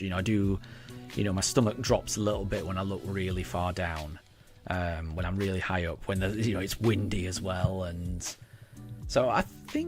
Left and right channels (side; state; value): both; identical; correlation 1.00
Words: My stomach drops a little bit when I look really far down, when I'm really high up, when it's windy as well. And so I